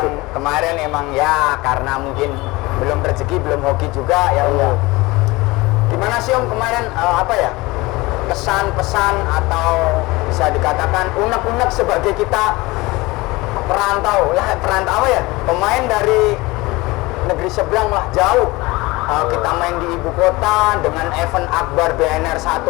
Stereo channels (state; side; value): quieter; right; 21.9 dB